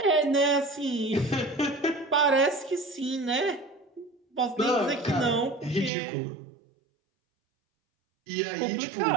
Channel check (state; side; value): drops out; left; at 5.9 s